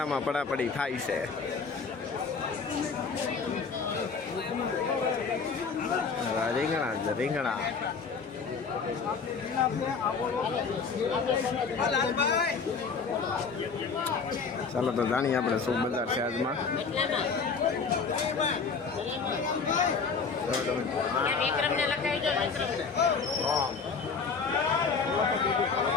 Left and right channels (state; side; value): quieter; right; 5.3 dB